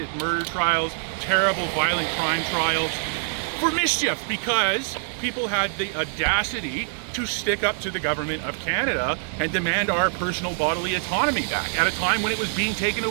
murder trials, terrible violent crime trials, for mischief, because people had the audacity to stick up to the government of Canada and demand our personal bodily autonomy back at a time when it was being taken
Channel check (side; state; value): left; silent; digital silence